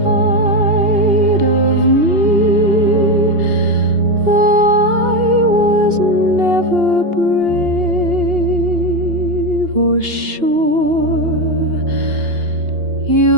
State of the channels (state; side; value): late; left; 2.8 ms